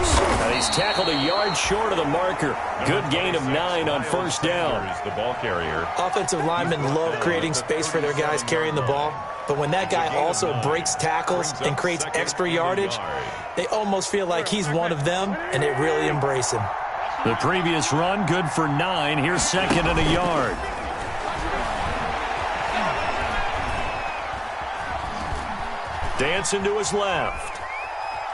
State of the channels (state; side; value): identical; both; correlation 1.00